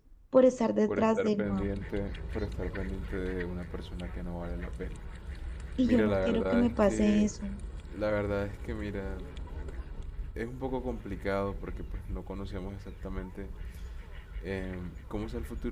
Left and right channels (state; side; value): identical; both; correlation 1.00